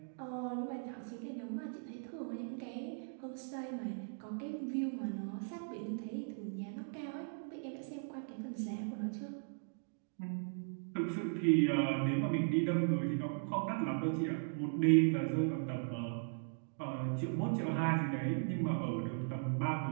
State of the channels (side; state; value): left; silent; digital silence